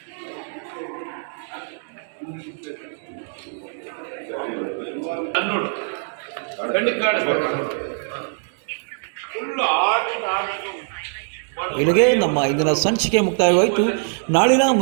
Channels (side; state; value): left; silent; 64 dB below the other